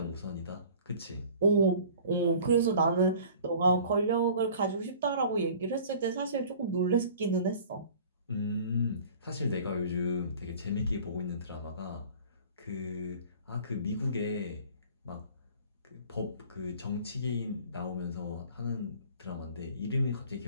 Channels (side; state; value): both; inverted; correlation -0.47